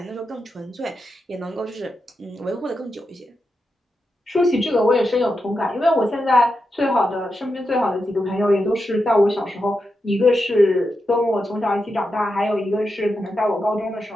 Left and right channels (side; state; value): both; normal; correlation 0.87